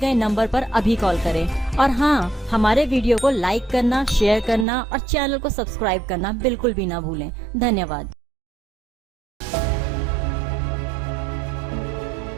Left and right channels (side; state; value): left; drops out; at 4.7 s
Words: नंबर पर अभी कॉल करें, और हाँ, हमारे वीडियो को लाइक करना, शेयर करना और चैनल को सब्सक्राइब करना बिल्कुल भी ना भूलें। धन्यवाद।